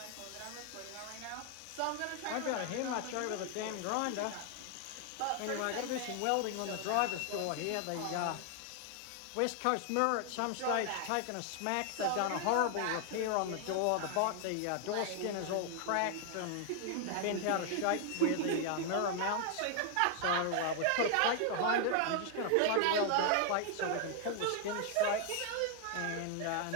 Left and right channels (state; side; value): different; both; correlation 0.00